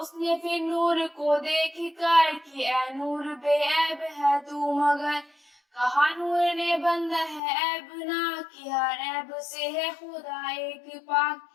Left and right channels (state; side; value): drops out; right; at 7.4 s